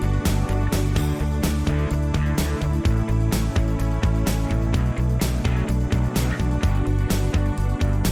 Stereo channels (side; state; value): both; identical; correlation 1.00